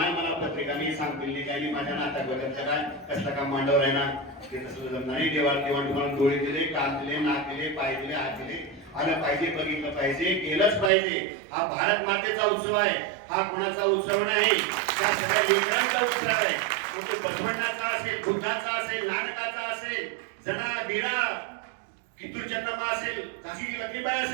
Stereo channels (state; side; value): drops out; left; at 10.9 s